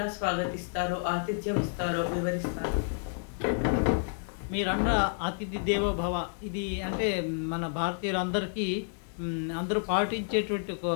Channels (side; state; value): right; silent; digital silence